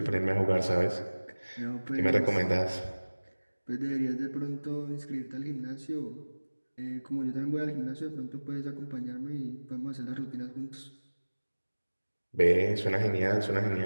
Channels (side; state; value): both; inverted; correlation -1.00